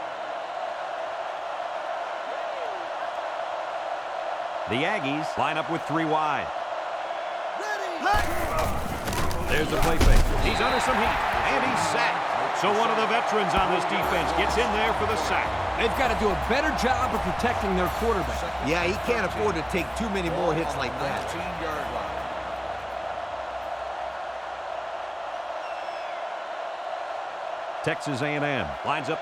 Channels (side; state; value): both; identical; correlation 1.00